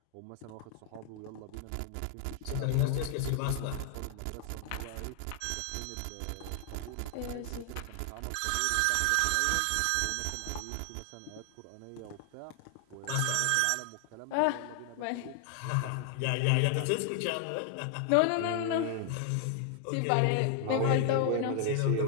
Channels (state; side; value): different; both; correlation 0.00